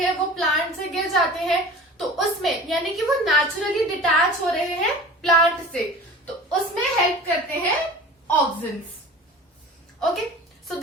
वो प्लांट से गिर जाते हैं, तो उसमें यानी कि वो नेचुरली डिटैच हो रहे हैं प्लांट से, तो उसमें हेल्प करते हैं auxins. Okay, so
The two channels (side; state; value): both; normal; correlation 0.40